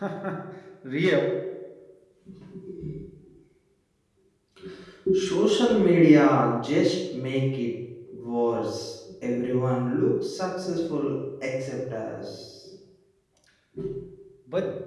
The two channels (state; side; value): identical; both; correlation 1.00